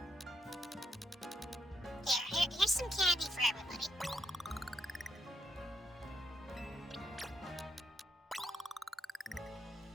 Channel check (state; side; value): normal; both; correlation 0.79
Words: Here's some candy for everybody.